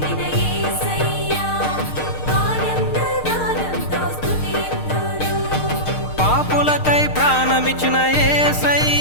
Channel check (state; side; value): late; right; 6.5 ms